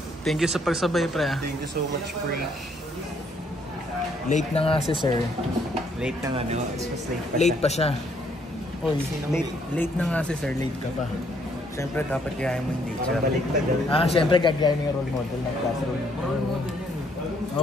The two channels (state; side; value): normal; both; correlation 0.68